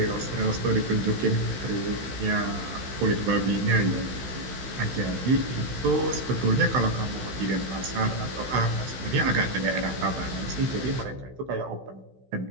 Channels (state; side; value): late; left; 16 ms